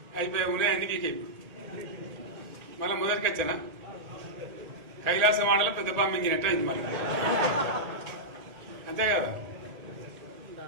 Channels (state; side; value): late; left; 1.8 ms